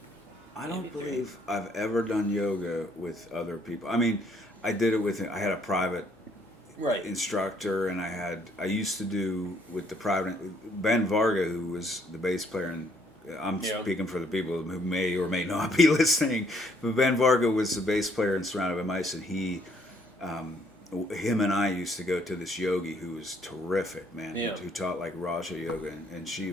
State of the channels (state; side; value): normal; both; correlation 0.66